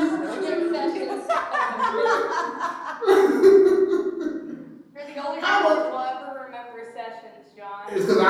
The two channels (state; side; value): identical; both; correlation 1.00